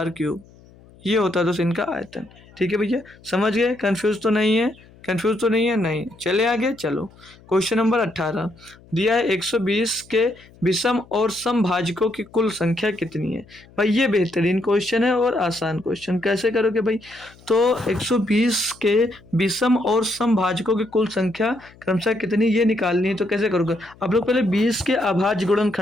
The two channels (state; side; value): noise; left; hum, 25 dB below the sound